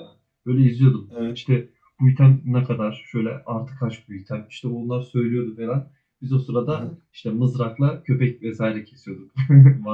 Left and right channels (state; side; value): identical; both; correlation 1.00